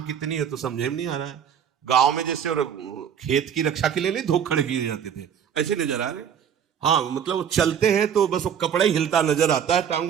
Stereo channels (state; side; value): quieter; left; 8.3 dB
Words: कितनी है तो समझे में नहीं आ रहा है। गांव में जैसे और खेत की रक्षा के लिए नहीं धोखड़ किए जाते थे, वैसे नजर आ रहे। हाँ, मतलब वो चलते हैं तो बस वो कपड़ा ही हिलता नजर आता है